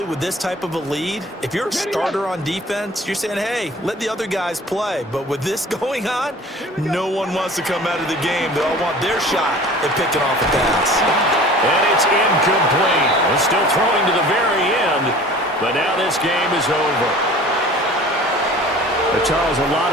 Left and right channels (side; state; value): both; normal; correlation 0.45